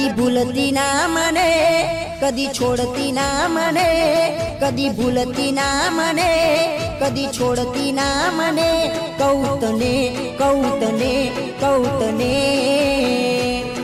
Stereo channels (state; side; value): identical; both; correlation 1.00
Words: भूलती ना मने कदी छोड़ती ना मने कदी भूलती ना मने कदी छोड़ती ना मने कौतने कौतने कौतने